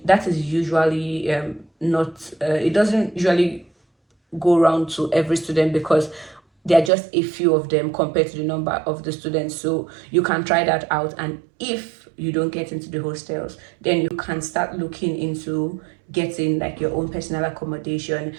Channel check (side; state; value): left; drops out; at 6.9 s